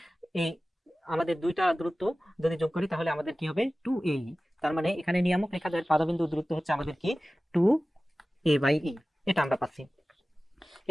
এই আমাদের দুইটা দূরত্ব যদি যোগ করি তাহলে আমাদের কি হবে 2a। তার মানে এখানে নিয়ামক রেখা দ্বয়ের পাদবিন্দুর দূরত্ব হচ্ছে আমাদের কি 2a বাই ই। এটা আমরা পাচ্ছি।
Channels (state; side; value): normal; both; correlation 0.96